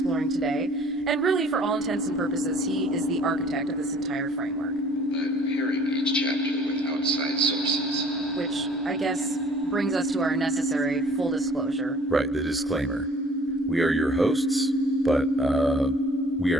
today, and really, for all intents and purposes, he is the architect of this entire framework. I'm pairing each chapter with outside sources. Which, I guess, brings us to our necessary full disclosure. Right, the disclaimer. We are your hosts, but we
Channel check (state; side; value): normal; both; correlation 0.53